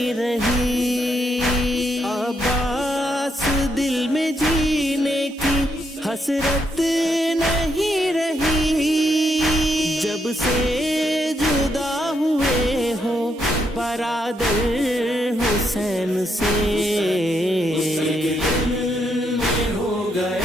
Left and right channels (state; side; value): normal; both; correlation 0.78